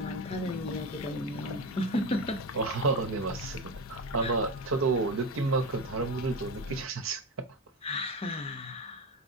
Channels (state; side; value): normal; both; correlation 0.21